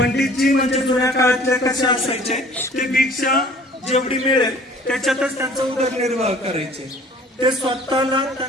म्हणजे जुन्या काळातले कसे असायचे ते भिक्षा जेवढी मिळेल त्याच्यातच त्यांचा उदरनिर्वाह करायचे. ते स्वतःला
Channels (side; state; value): both; normal; correlation 0.51